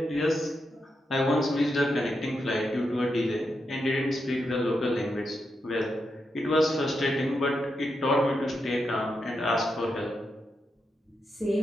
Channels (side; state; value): both; normal; correlation 0.85